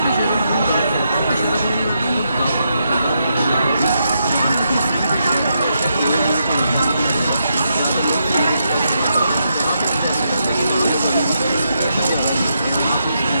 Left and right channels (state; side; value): inverted; both; correlation -0.81